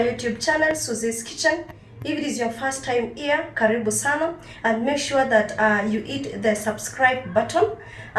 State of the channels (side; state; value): both; identical; correlation 1.00